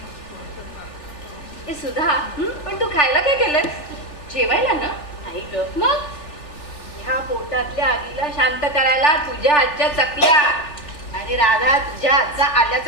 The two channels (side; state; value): right; late; 3.4 ms